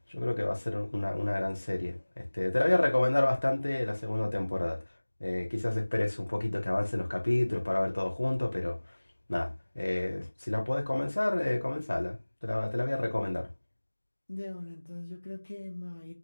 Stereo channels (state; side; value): inverted; both; correlation -1.00